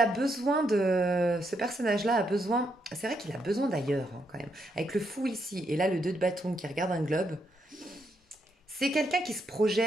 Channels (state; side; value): normal; both; correlation 0.78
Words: besoin de... Ce personnage-là a besoin... C'est vrai qu'il a besoin d'ailleurs, hein, quand même. Avec le fou ici, et là le 2 de bâton qui regarde un globe. C'est quelqu'un qui se